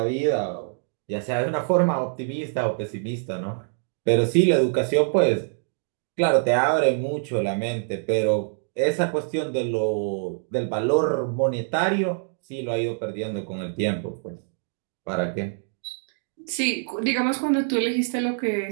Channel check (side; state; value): left; silent; digital silence